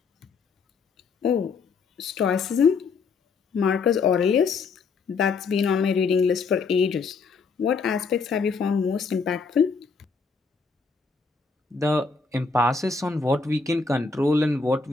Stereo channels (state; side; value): quieter; right; 4.7 dB